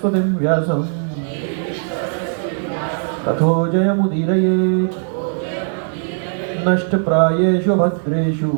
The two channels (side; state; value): left; silent; 67 dB below the other